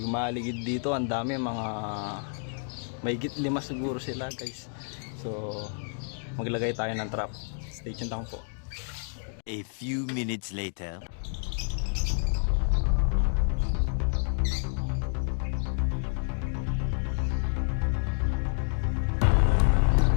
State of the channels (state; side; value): silent; right; 56 dB below the other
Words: maligid dito, ang dami, mga may higit 5 siguro sila guys. So maglagay tayo ng trap. Stay tuned lang po. A few minutes later.